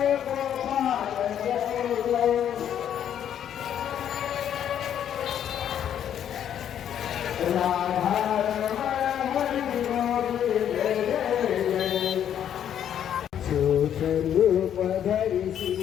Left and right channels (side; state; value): right; quieter; 9.7 dB